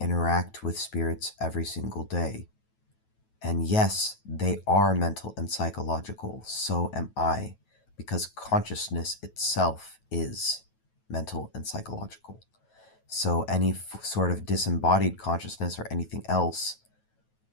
interact with spirits every single day. And yes, they are mental and psychological. So am I, because consciousness itself is mental and psychological. So any sort of disembodied consciousness or anything else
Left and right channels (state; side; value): late; right; 9.2 ms